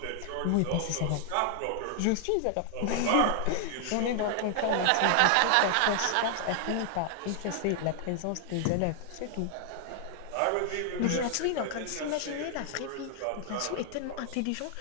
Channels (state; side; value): different; both; correlation 0.00